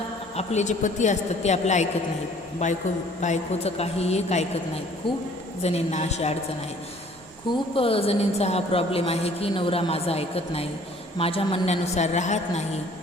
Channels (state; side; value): normal; both; correlation 0.55